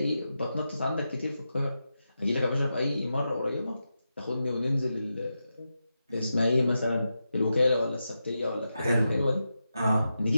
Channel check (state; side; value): inverted; both; correlation -0.89